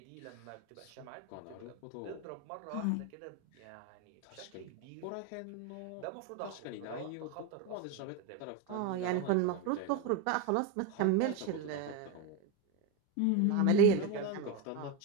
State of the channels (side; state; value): both; different; correlation 0.04